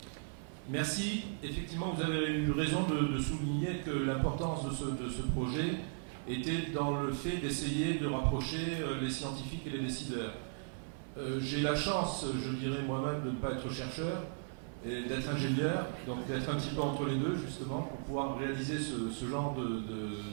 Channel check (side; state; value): left; silent; 53 dB below the other